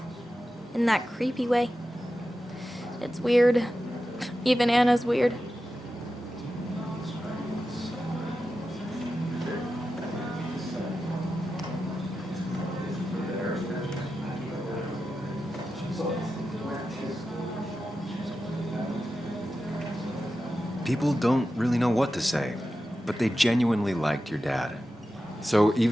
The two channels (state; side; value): normal; both; correlation 0.92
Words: in that creepy way. It's weird. Even Anna's weird. People don't really know what to say, but they genuinely liked your dad. So